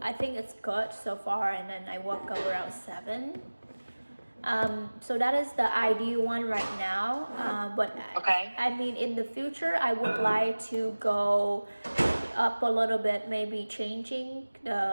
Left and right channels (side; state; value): both; inverted; correlation -1.00